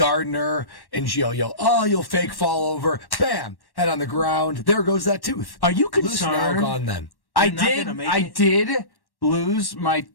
her, and you'll fake fall over. Bam! Head on the ground. There goes that tooth. Are you Loose now, concerned? gone then. I You're not did. gonna make I it? did lose my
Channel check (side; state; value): right; late; 1.1 ms